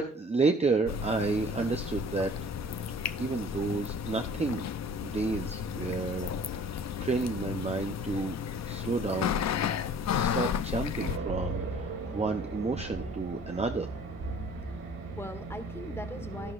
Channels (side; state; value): both; normal; correlation 0.50